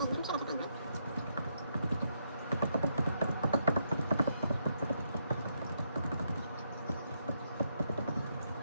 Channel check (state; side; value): inverted; both; correlation -0.78